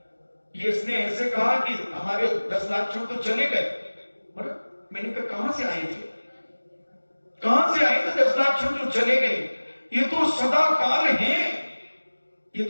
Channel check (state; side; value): inverted; both; correlation -1.00